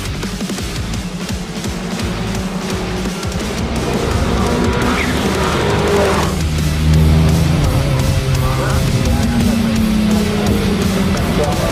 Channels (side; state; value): both; identical; correlation 1.00